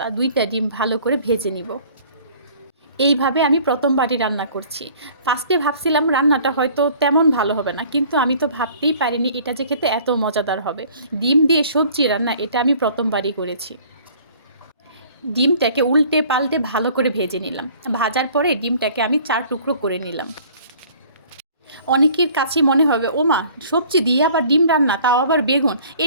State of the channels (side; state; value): both; inverted; correlation -0.52